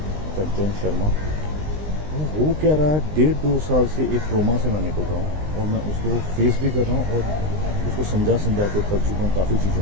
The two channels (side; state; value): left; late; 19 ms